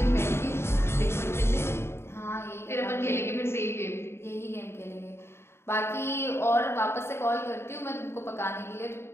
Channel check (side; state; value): right; late; 0.12 ms